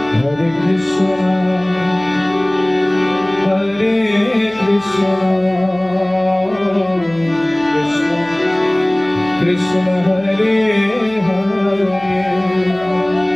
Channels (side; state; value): right; noise; hum, 25 dB below the sound